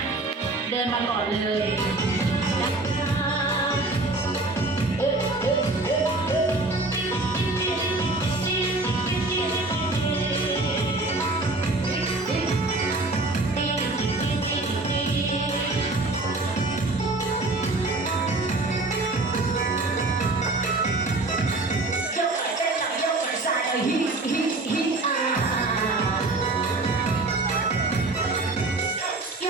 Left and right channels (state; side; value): quieter; left; 3.0 dB